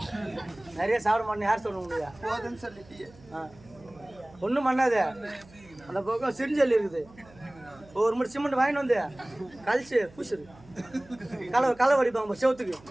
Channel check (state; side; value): noise; right; hum, 24 dB below the sound